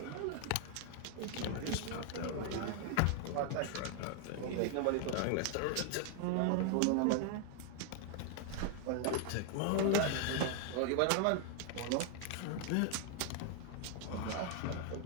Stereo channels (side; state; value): both; different; correlation 0.00